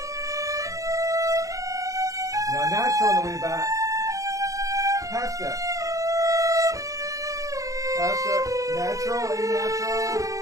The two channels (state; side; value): late; left; 0.16 ms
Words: Now natural on the way back. Half step. Half step. Natural, A natural.